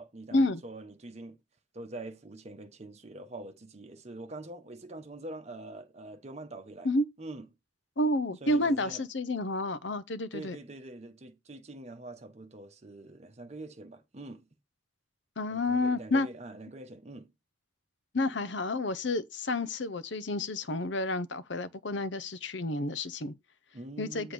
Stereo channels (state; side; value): normal; both; correlation 0.38